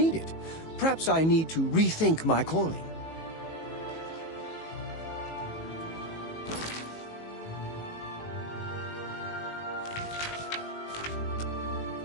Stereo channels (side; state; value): right; late; 18 ms